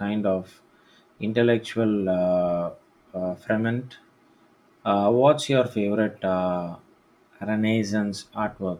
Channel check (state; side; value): identical; both; correlation 1.00